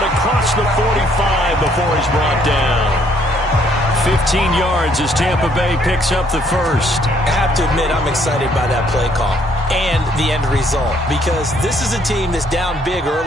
across the 45 before he's brought down. 15 yards as Tampa Bay picks up the first. I have to admit, I'm excited by that play call and the end result, because this is a team that's down big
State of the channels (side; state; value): both; normal; correlation 0.66